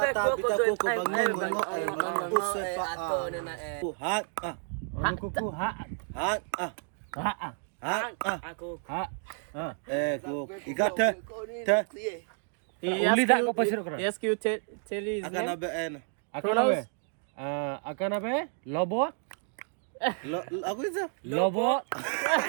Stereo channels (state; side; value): silent; left; 57 dB below the other